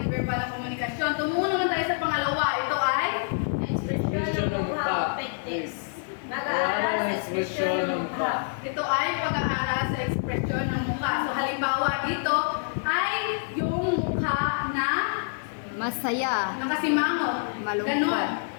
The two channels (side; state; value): right; silent; 60 dB below the other